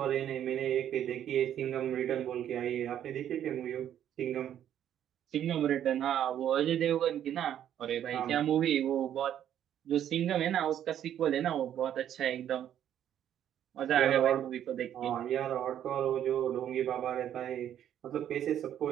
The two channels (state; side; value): quieter; left; 10.4 dB